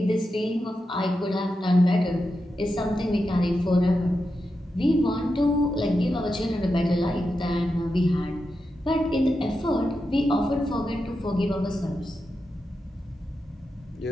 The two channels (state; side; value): normal; both; correlation 0.88